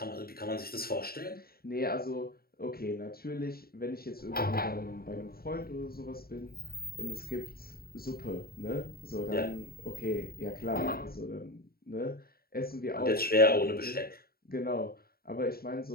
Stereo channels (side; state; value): right; late; 0.44 ms